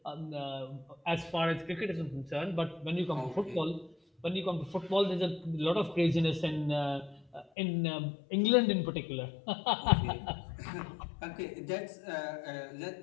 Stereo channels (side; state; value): right; drops out; at 7.5 s